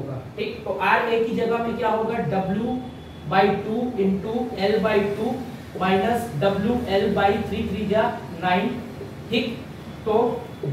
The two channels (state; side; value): identical; both; correlation 1.00